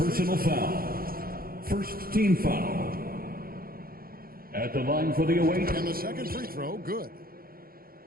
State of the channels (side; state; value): left; late; 0.43 ms